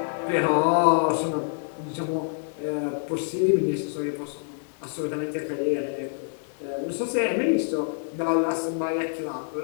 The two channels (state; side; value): silent; right; digital silence